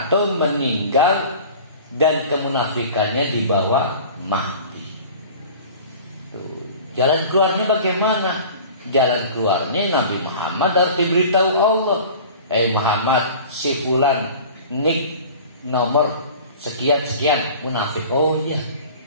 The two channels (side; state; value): both; inverted; correlation -0.41